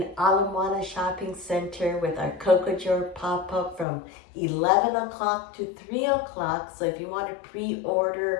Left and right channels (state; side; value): drops out; right; at 3.9 s